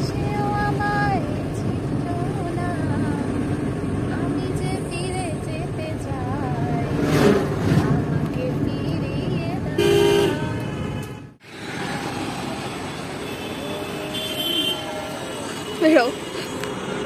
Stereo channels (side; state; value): both; identical; correlation 1.00